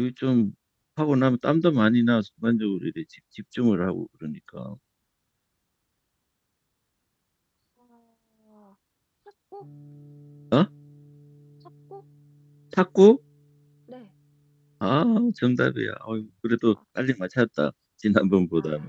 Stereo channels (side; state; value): both; identical; correlation 1.00